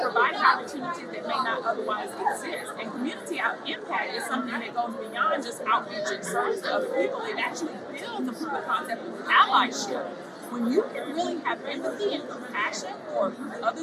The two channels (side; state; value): both; identical; correlation 1.00